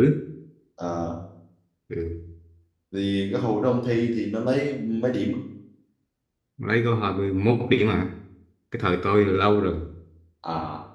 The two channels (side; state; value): both; identical; correlation 1.00